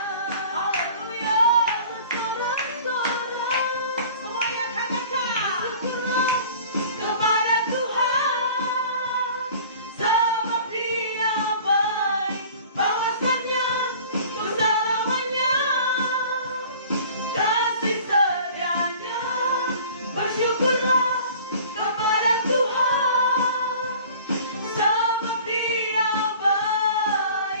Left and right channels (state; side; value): inverted; both; correlation -0.46